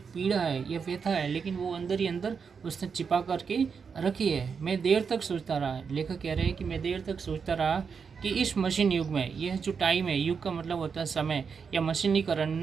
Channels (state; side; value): quieter; left; 6.0 dB